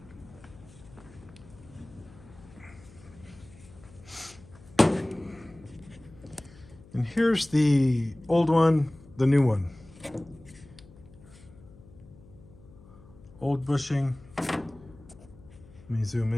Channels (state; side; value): noise; left; hum, 22 dB below the sound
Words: And here's the old one, the new one. Old bushing. Let me zoom